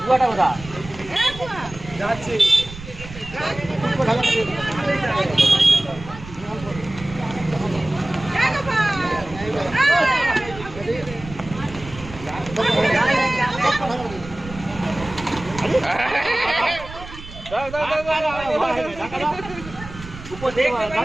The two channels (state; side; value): noise; right; rumble, 14 dB below the sound